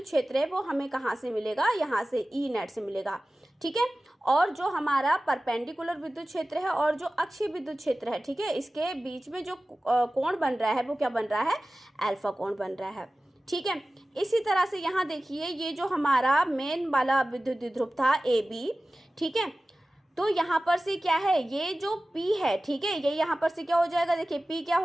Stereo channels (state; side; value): normal; both; correlation 0.96